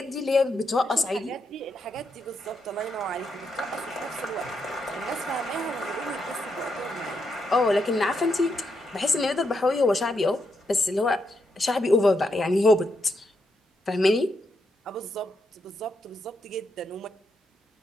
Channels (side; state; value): both; normal; correlation 0.81